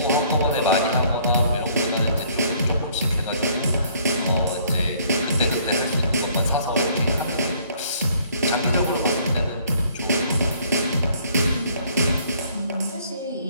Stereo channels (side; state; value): both; inverted; correlation -0.61